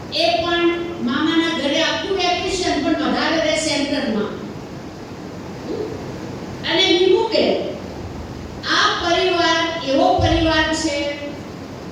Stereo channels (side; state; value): both; identical; correlation 1.00